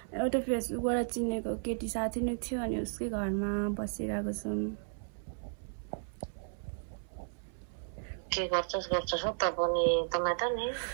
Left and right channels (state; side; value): silent; left; 55 dB below the other